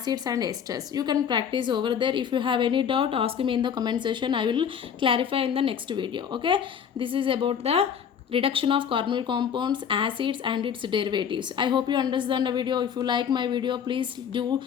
and esters. You can practice over there. If you have any doubt, ask me in the comment section. I will clarify in the next video. Okay, this is about the reduction of carbonyl compounds, acids and its derivatives. I hope you understand the video. If you like my video, please do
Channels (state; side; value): quieter; right; 7.9 dB